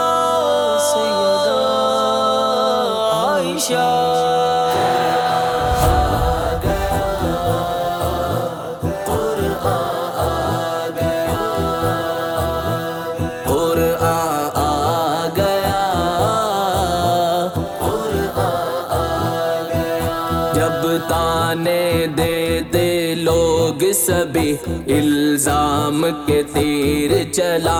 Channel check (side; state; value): both; identical; correlation 1.00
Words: سیدہ عائشہ۔ جب تانے دیتے لوگ سبھی الزام کے تیر